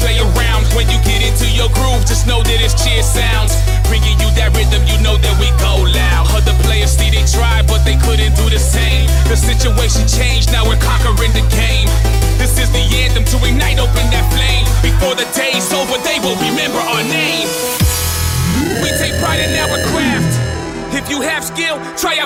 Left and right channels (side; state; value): both; identical; correlation 1.00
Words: around. When you get into your groove, just know that it's cheer sounds. Bringing you that rhythm, you know that we go loud. Other players see they tried, but they couldn't do the same. The situation changed, now we're conquering the game. This is the anthem to ignite, open that flame. Before the day's over, they will remember our name. We take pride in our craft. If you have skill, try